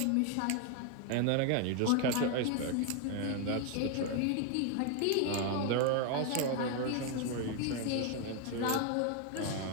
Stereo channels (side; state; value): both; different; correlation 0.01